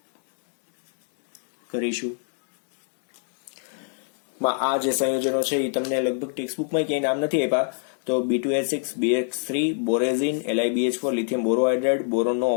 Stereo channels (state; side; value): silent; right; 60 dB below the other